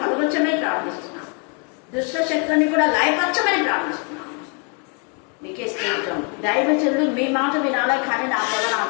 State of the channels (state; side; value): quieter; right; 36.3 dB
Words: కలగొచ్చమని ప్రార్థిస్తున్నాం. దుష్ట శక్తులని కూడా లయపరచమని ప్రార్థిస్తున్నాం. మీకే స్తోత్రం. దైవజనులు మీ మాట వినాలే కానీ నా ప్రభ నా